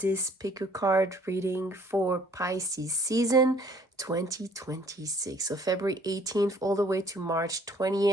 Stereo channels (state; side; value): normal; both; correlation 0.59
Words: pick a card reading for Pisces season 2026. So February 18th all the way to March